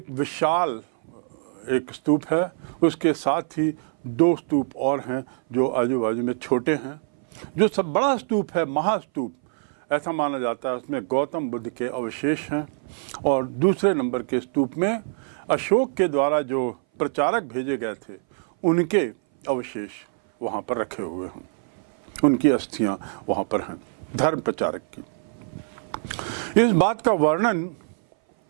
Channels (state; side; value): silent; left; 59 dB below the other